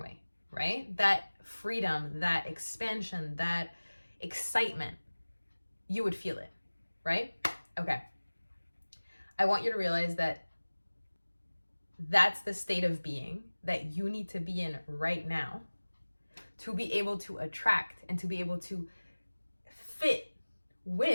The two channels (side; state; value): both; inverted; correlation -1.00